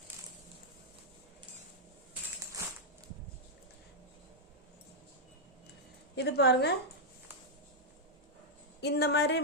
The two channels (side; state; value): both; normal; correlation -0.05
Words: இது பாருங்க, இந்த மாதிரி